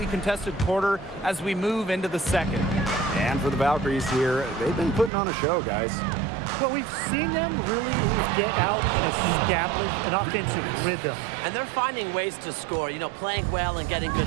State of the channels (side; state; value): left; drops out; at 5.1 s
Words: contested quarter as we move into the second. And for the Valkyries here, they've been putting on a show, guys. Well, we've seen them really get out and establish an offensive rhythm. And they're finding ways to score, you know, playing well and getting